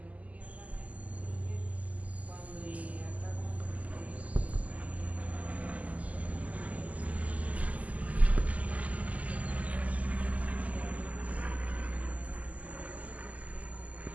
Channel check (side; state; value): left; late; 0.073 ms